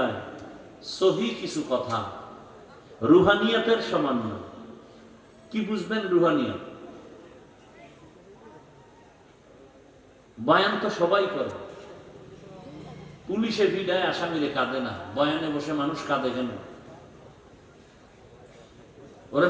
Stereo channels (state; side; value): identical; both; correlation 1.00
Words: সহি কিছু কথা, রুহানিয়াতের সমন্বয়। কি বুঝবেন রুহানিয়াত? বয়ান তো সবাই করে। পুলিশে ভিড়ায় আসামিরে কাঁদে না, বয়ানে বসে মানুষ কাঁদে কেন? ওরে